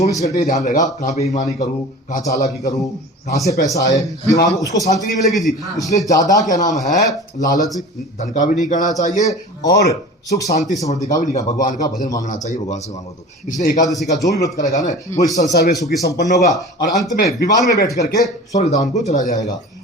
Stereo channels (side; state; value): both; normal; correlation 0.38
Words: घंटे ध्यान रहेगा, कहाँ बेईमानी करूं, कहाँ चालाकी करूं, कहाँ से पैसा आए, दिमाग उसको शांति नहीं मिलेगी जी। इसलिए ज्यादा क्या नाम है, लालच धन का भी नहीं करना चाहिए और सुख शांति समृद्धि का भी नहीं करना। भगवान का भजन मांगना चाहिए, भगवान से मांगो तो। इसलिए एकादशी का जो भी व्रत करेगा ना, वो इस संसार में सुखी संपन्न होगा और अंत में विमान में बैठ करके स्वर्ग धाम को चला जाएगा।